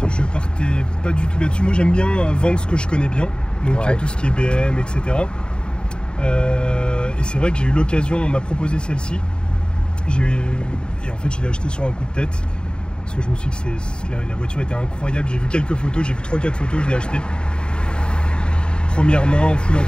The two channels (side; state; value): right; late; 0.050 ms